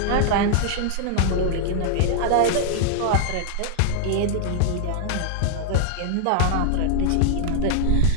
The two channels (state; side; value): different; both; correlation -0.01